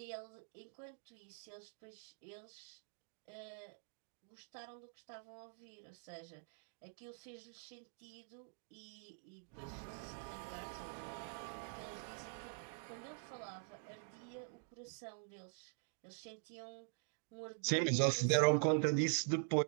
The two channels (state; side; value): silent; left; digital silence